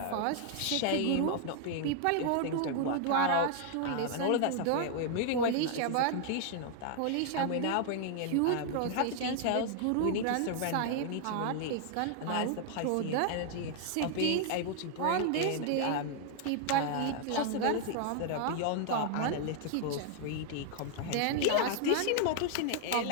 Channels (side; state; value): both; different; correlation 0.00